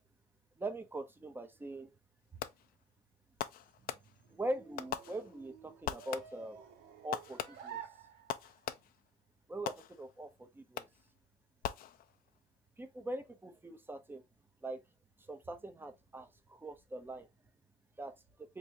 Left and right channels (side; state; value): both; normal; correlation 0.49